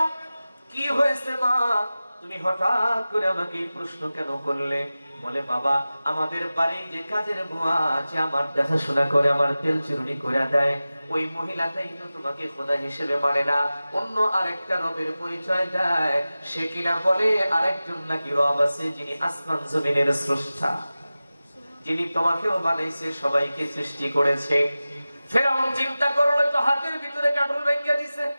কি হয়েছে মা, তুমি হঠাৎ করে আমাকে এই প্রশ্ন কেন করলে? বলে বাবা আমাদের বাড়ি যে কাজের বুয়া আছে, আমার দেখাশোনা করে, আমার তেল চিরুনি করে দেয়, ওই মহিলাটাই তো তোমাকে খোদা হিসেবে মানে না, অন্য আরেকটা রবের পরিচয় দেয়। সে কিনা বলে আরেকজন নাকি রব আছে, যিনি আসমান জমিনের স্রষ্টা, যিনি তোমাকেও বানাইছে, সবাইকে সৃষ্টি করেছে। ফেরাউন চিন্তা করলো তো হাতের ভিতরে কাটল ভেঙে দিছে,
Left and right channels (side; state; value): both; inverted; correlation -0.96